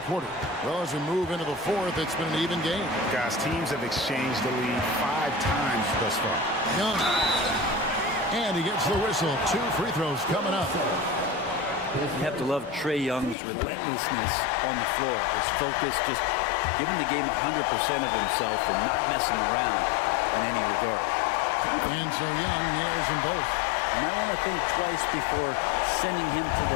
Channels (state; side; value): drops out; right; at 13.4 s